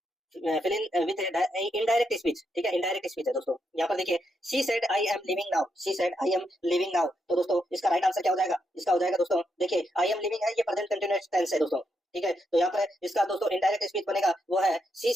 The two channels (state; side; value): normal; both; correlation 0.80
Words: fill in with indirect speech, ठीक है, इनडायरेक्ट स्पीच है दोस्तों। यहाँ पर देखिए she said I am living now, she said I am living now, तो दोस्तों इसका राइट आंसर क्या हो जाएगा? इसका हो जाएगा दोस्तों देखिए आई एम लिविंग है, ये प्रेजेंट कंटीन्यूअस टेंस है दोस्तों, ठीक है। तो यहाँ पर इसका दोस्तों इनडायरेक्ट स्पीच बनेगा वो है she